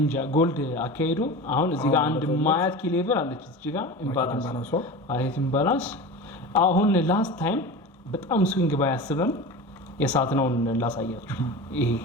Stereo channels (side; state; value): both; normal; correlation 0.31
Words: እንጃ ጎልድ አካሄዱ አሁን እዚህ ጋር አንድ ማያት ኪ ሌቨል አለች እዚህ ጋር ኢምባላንስ አሁን ላስት ታይም በጣም ስዊንግ ባያስብም የሳት ነው ላሳያችሁ። ይሄ